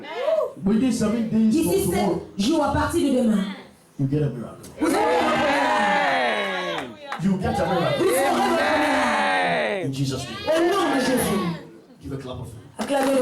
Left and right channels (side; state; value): both; identical; correlation 1.00